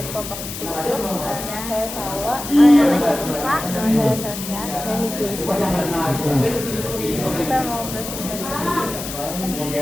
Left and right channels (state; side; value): noise; left; hiss, 8 dB below the sound